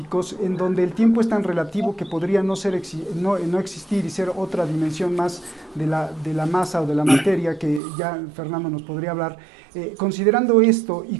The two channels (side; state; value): left; drops out; at 7.8 s